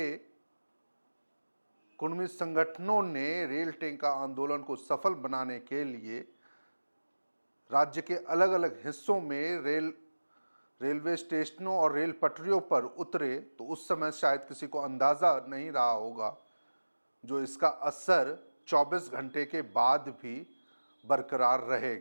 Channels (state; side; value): inverted; both; correlation -1.00